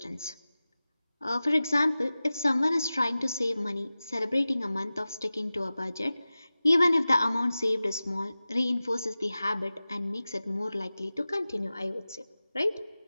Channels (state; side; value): inverted; both; correlation -0.96